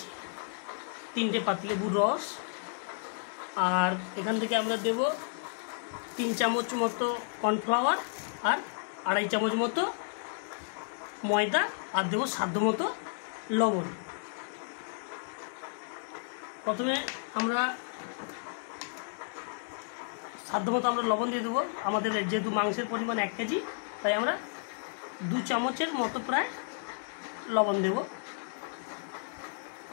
3টে পাতিলেবুর রস, আর এখান থেকে আমরা দেব 3 চামচ মতো কর্নফ্লাওয়ার আর 2.5 চামচ মতো ময়দা, আর দেবো সাধ্য মতো লবণ। প্রথমে আমরা সাধ্যমতো আমরা লবণ দিয়ে দেবো। আমাদের যেহেতু মাংসের পরিমাণ 1 কেজি, তাই আমরা 2 চামচের মতো প্রায় লবণ দেব।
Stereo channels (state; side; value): silent; right; digital silence